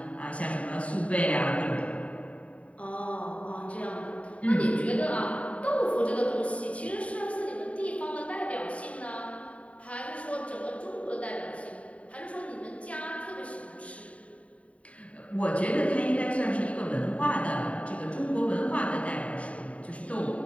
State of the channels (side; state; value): right; late; 0.065 ms